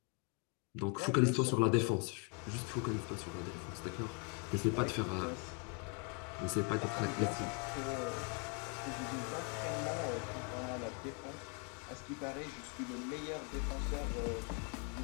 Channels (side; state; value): right; quieter; 36.9 dB